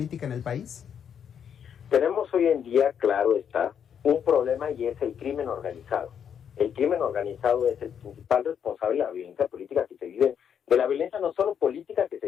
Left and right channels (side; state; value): right; quieter; 8.2 dB